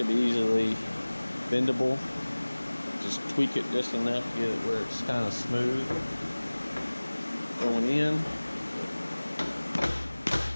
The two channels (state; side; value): inverted; both; correlation -1.00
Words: be easily bendable. Just tweak it just enough to get it where it's kind of smooth going in.